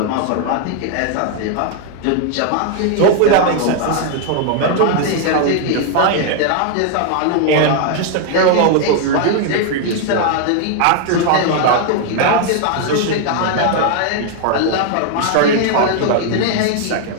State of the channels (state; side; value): different; both; correlation 0.00